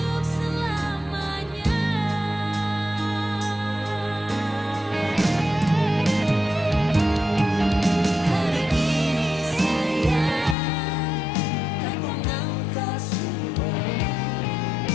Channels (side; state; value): right; drops out; at 10.6 s